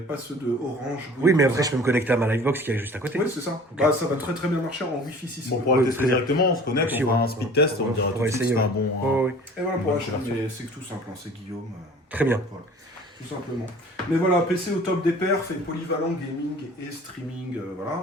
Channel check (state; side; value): normal; both; correlation 0.46